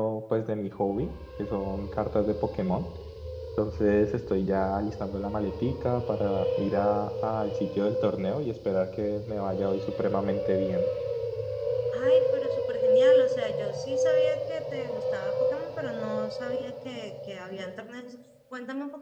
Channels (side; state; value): both; identical; correlation 1.00